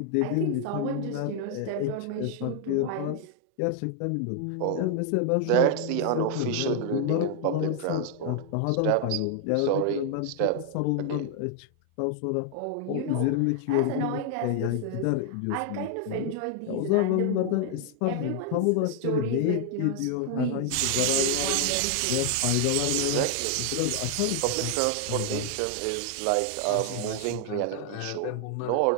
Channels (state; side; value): different; both; correlation 0.00